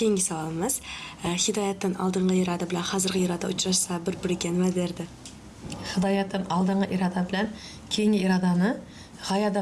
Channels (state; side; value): identical; both; correlation 1.00